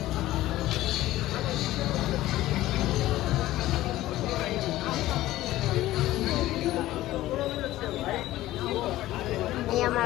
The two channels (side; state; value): right; quieter; 15.7 dB